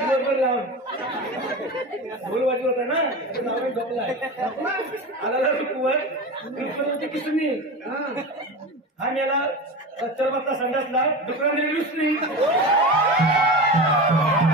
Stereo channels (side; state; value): both; normal; correlation 0.27